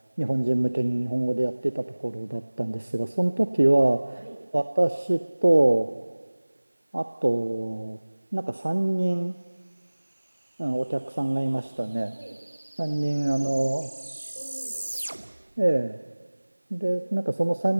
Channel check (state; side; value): inverted; both; correlation -1.00